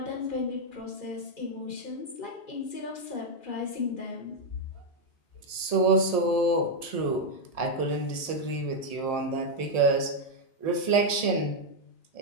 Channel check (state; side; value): late; right; 1.7 ms